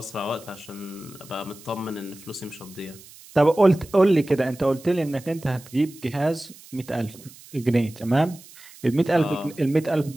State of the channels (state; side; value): noise; right; hiss, 21 dB below the sound